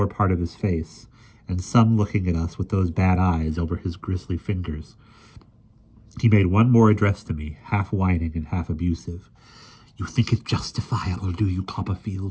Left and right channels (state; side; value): identical; both; correlation 1.00